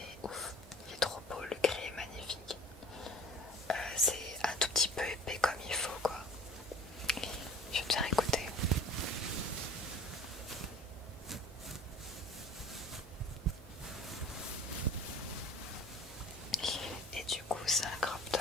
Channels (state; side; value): normal; both; correlation 0.45